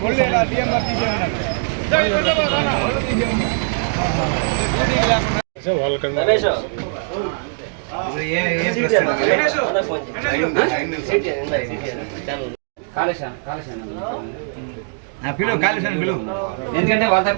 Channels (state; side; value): silent; left; digital silence